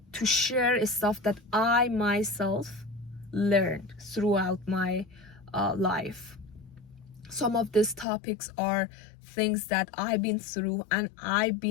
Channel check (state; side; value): drops out; right; at 8.1 s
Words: to share stuff that I myself learned throughout my life. Some of these topics are things that I've been through and I've